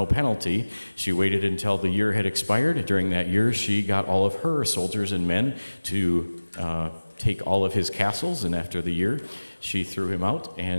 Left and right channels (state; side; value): inverted; both; correlation -1.00